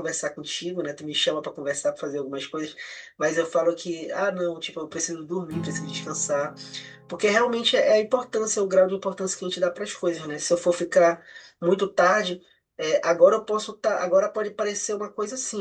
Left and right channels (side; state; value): both; identical; correlation 1.00